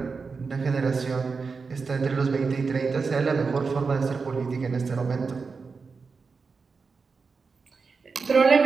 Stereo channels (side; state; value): left; quieter; 4.8 dB